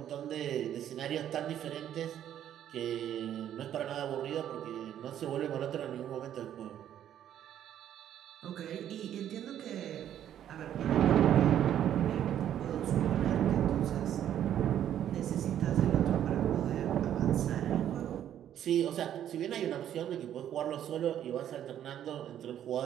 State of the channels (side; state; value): left; quieter; 10.6 dB